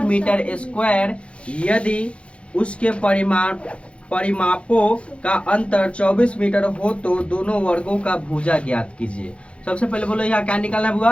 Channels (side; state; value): right; late; 0.060 ms